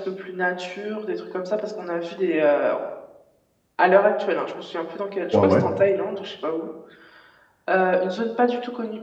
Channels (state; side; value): identical; both; correlation 1.00